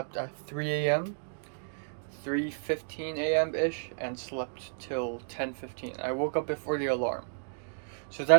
at 3 a.m., 3:15 a.m. ish, and slept till 10:15. I woke up before the alarm. So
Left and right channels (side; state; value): left; silent; digital silence